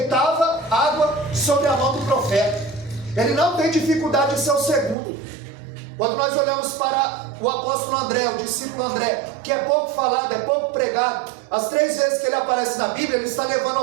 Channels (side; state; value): left; drops out; at 5.0 s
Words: água sobre a mão do profeta. Ele não tem dificuldade de ser o segundo. Quando nós olhamos para o apóstolo André, o discípulo André, que é pouco falado, é pouco pregado, as 3 vezes que ele aparece na Bíblia, ele está levando